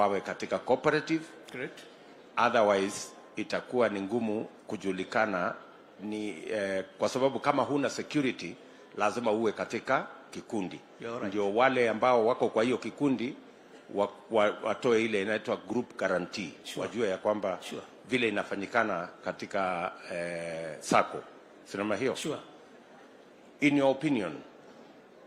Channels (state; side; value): identical; both; correlation 1.00